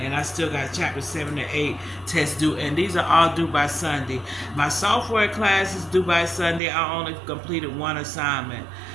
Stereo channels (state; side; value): drops out; left; at 6.6 s